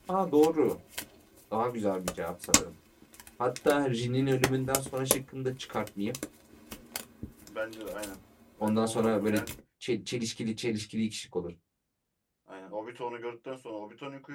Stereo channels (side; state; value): both; identical; correlation 1.00